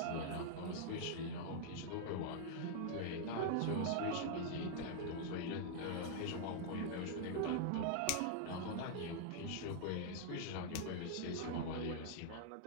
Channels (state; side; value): different; both; correlation -0.01